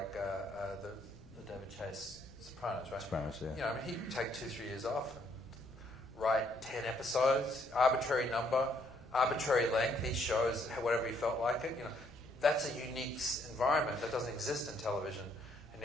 the David Chase Sopranos, right? Sopranos, yeah. He'd take 2-3 years off and write 10 episodes, arbitrary number, arbitrary length. He shows whatever he felt like it. That's a unique environment that doesn't exist in television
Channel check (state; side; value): noise; left; rumble, 24 dB below the sound